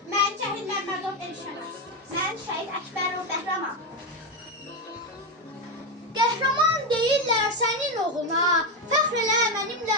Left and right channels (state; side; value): normal; both; correlation 0.10